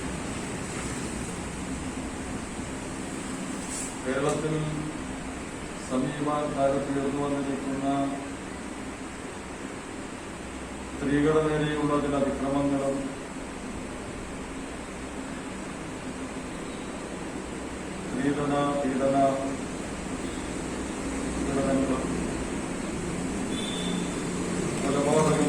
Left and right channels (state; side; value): identical; both; correlation 1.00